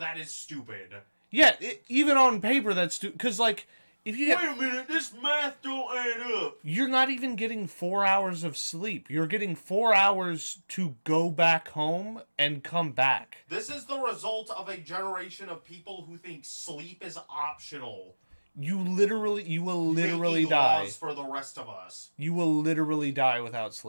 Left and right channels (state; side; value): inverted; both; correlation -1.00